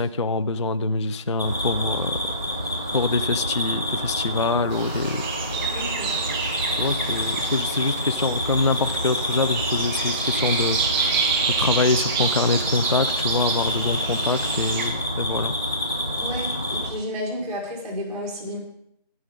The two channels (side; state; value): both; inverted; correlation -0.37